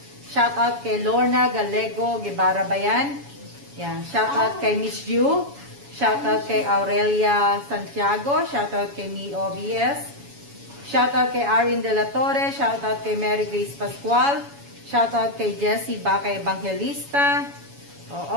Shoutout kay Lorna Galego Guevara Bayan. Yan. Shoutout kay Miss Yu. Shoutout kay Aurelia Santiago. Shoutout kay Mi OBS. Shoutout kay Arin De La Torre. Shoutout kay Mary Grace Pascual. Shoutout kay Jessie Baca Evangelista.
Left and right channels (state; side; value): late; left; 7.1 ms